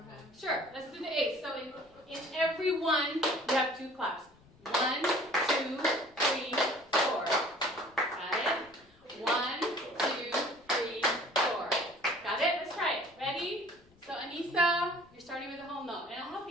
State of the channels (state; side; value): noise; left; rumble, 30 dB below the sound